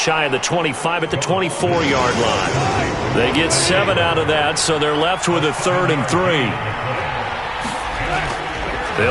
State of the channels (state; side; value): identical; both; correlation 1.00